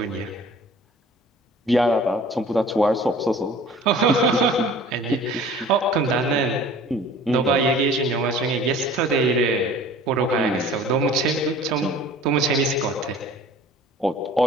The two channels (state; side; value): normal; both; correlation 0.47